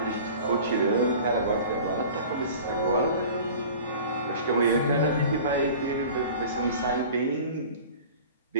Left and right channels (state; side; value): inverted; both; correlation -0.42